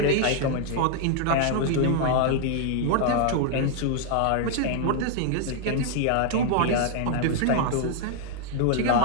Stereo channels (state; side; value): different; both; correlation 0.00